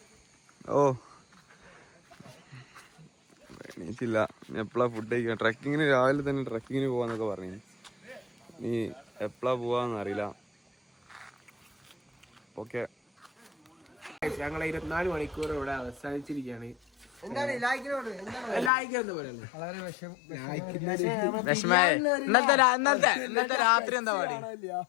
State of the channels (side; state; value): right; drops out; at 18.7 s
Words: ഓ എണീച്ചില്ല. എപ്പോഴാ ഫുഡ് കഴിക്കാം? ട്രക്കിങ്ങിന് രാവിലെ തന്നെ ട്രക്കിങ്ങിന് പോവാന്നൊക്കെ പറഞ്ഞു. നീ എപ്പോഴാ പോവാന്നറിയില്ല. ഓക്കെ, ഞങ്ങളെ 24 മണിക്കൂർ ഇവിടെ അവസാനിച്ചിരിക്കുകയാണ്. ഇന്നത്തെ രാത്രി എന്താ പാടി?